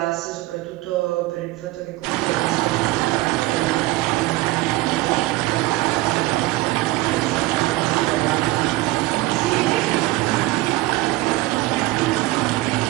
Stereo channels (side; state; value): left; quieter; 18.8 dB